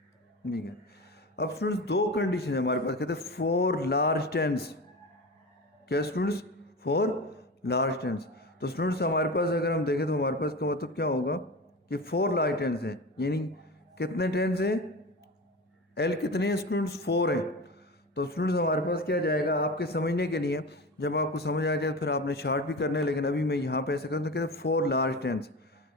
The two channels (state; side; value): normal; both; correlation 0.28